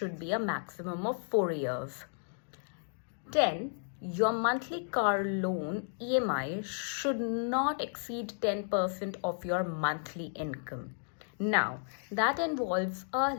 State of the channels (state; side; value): silent; right; digital silence